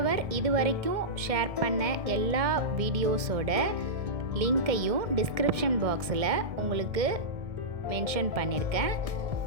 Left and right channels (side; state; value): left; late; 1.7 ms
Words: இது வரைக்கும் ஷேர் பண்ண எல்லா வீடியோஸோட லிங்க்கையும் டிஸ்கிரிப்ஷன் பாக்ஸில் உங்களுக்கு மென்ஷன் பண்ணியிருக்கேன்.